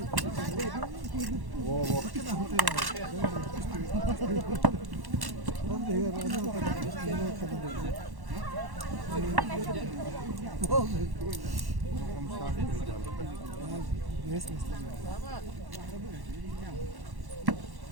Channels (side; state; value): left; late; 1.1 ms